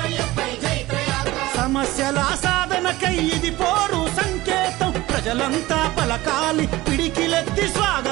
సమస్యల సాధనకై ఇది పోరు సంకేతం ప్రజలంతా పలకాలి పిడికిలెత్తి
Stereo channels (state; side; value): quieter; left; 18.4 dB